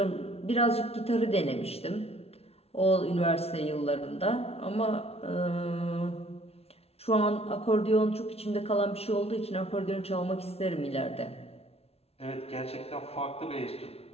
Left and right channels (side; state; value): right; late; 0.30 ms